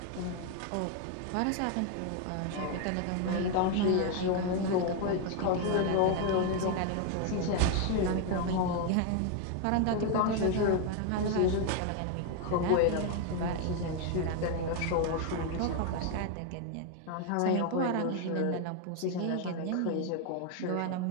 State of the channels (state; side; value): different; both; correlation 0.01